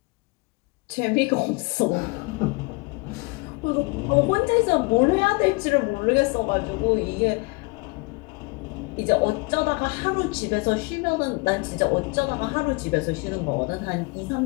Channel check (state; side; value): quieter; right; 27.8 dB